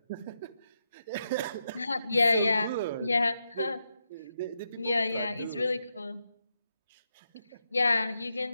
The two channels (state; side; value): inverted; both; correlation -0.85